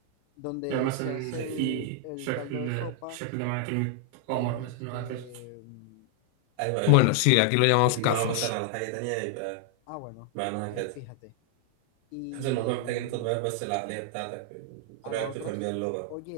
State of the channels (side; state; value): both; different; correlation 0.00